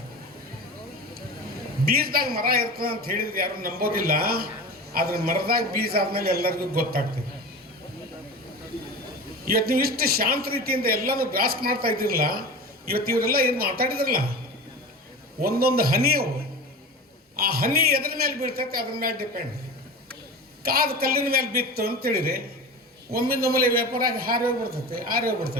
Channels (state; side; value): normal; both; correlation 0.30